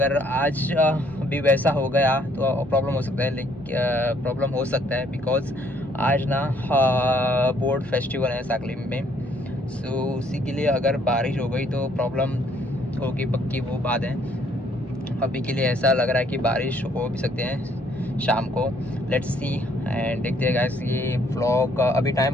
आज भी वैसा हो गया तो प्रॉब्लम हो सकता है, लेकिन बिकॉज आज ना बोर्ड फेस्टिवल है साकली में। सो उसी के लिए अगर बारिश हो गई तो प्रॉब्लम होगी, पक्की वो बात है। अभी के लिए ऐसा लग रहा है कि बारिश हो भी सकते हैं शाम को। लेट्स सी एंड देखते हैं गाइस। ये व्लॉग अभी टाइम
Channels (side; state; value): both; normal; correlation 0.65